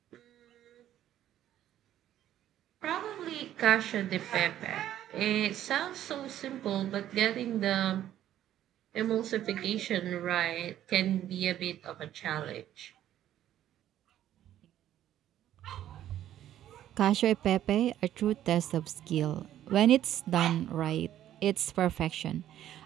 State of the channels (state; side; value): quieter; left; 11.9 dB